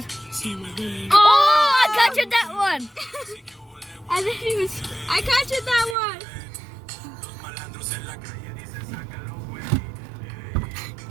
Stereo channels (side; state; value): left; drops out; at 6.0 s